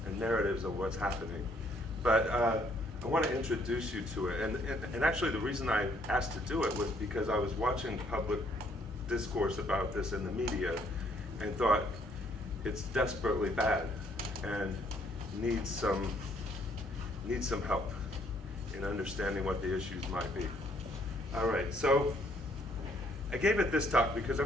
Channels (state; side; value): normal; both; correlation 0.66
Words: and narratives of what's happening. But I want to introduce you to it. And actually, the reason I asked to do it was because I was watching public discourse about this in the media and thought it's desperately bad and needs some help in understanding what the issues might be. All right, so I gave it this talk because I'm